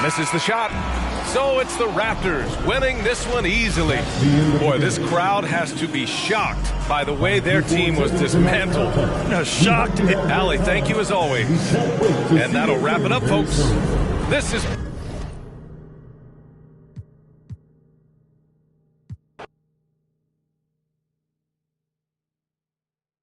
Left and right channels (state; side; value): identical; both; correlation 1.00